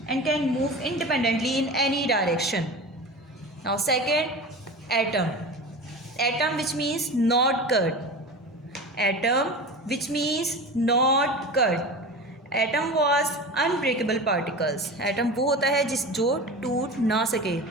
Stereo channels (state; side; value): normal; both; correlation 0.31